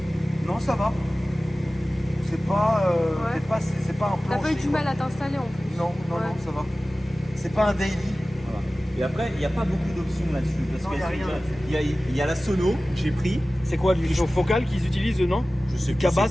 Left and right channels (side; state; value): both; normal; correlation 0.97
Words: Non, ça va. C'est pas, Ouais. c'est pas un T'as plancher. pas eu du quoi. mal à t'installer en plus. Non, Ouais. ça va. C'est pas un daily. Voilà. Et après, il n'y a pas beaucoup d'options là-dessus. Parce Non, qu'il y a rien là-dessus. il y a la sono que j'ai pris. C'est quoi, du focal qu'ils utilisent, non? Je sais plus Cabas, c'est